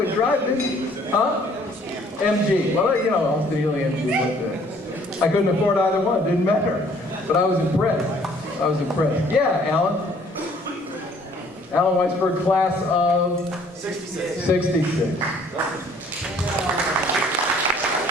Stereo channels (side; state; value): both; normal; correlation 0.59